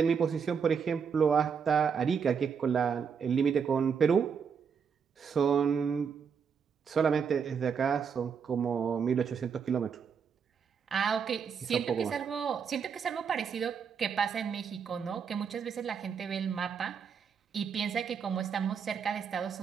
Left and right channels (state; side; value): quieter; left; 6.6 dB